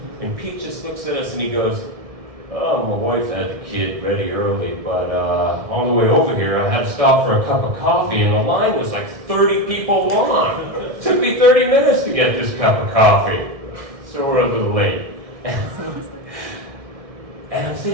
And Pete just looks at us and he goes, oh, my wife had the kid ready early, but on the way over here, I had to stop for a cup of coffee, and the line was like 30 people long. It took me 30 minutes to get this cup of coffee. So we're a little late. And I'm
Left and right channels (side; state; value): left; late; 1.6 ms